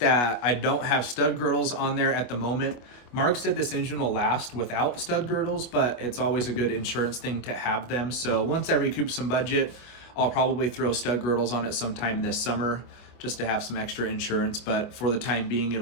I don't have stud girdles on there at the moment. Mark said this engine will last without stud girdles, but it's always a good insurance thing to have them. So once I recoup some budget, I'll probably throw stud girdles on it sometime this summer just to have some extra insurance, but for the time being,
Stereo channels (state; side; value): late; right; 25 ms